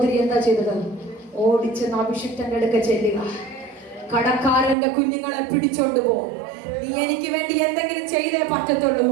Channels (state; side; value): drops out; left; at 4.8 s